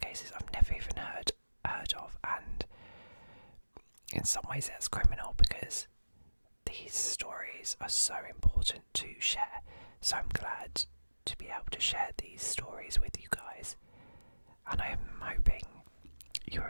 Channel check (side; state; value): both; inverted; correlation -1.00